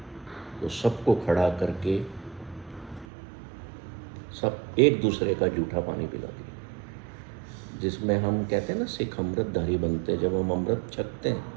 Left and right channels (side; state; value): left; drops out; at 3.1 s